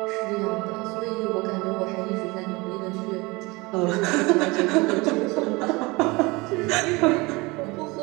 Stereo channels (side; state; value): left; quieter; 24.5 dB